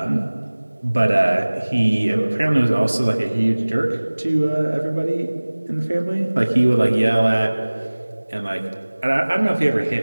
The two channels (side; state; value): both; inverted; correlation -1.00